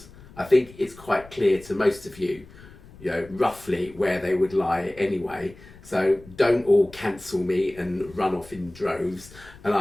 I think it's quite clear to most of you, roughly where they would lie anyway. So don't all cancel me and run off in droves. And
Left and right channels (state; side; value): noise; left; rumble, 21 dB below the sound